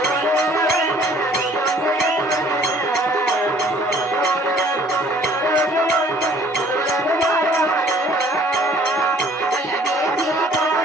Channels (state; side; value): normal; both; correlation 0.57